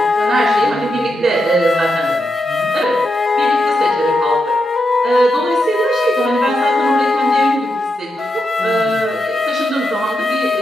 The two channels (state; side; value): normal; both; correlation 0.85